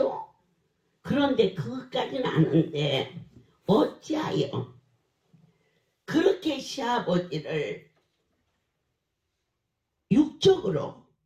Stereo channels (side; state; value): both; identical; correlation 1.00